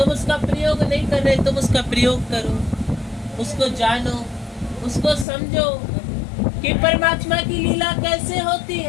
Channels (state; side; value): drops out; right; at 5.2 s